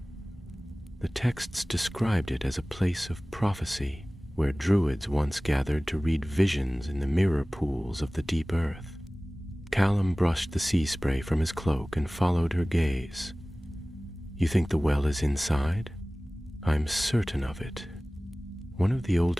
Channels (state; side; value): normal; both; correlation 0.98